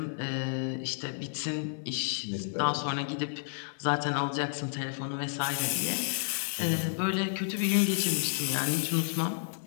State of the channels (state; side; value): silent; right; digital silence